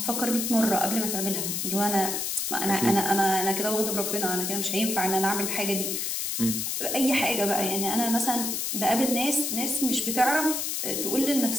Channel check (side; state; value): left; noise; hiss, 1 dB below the sound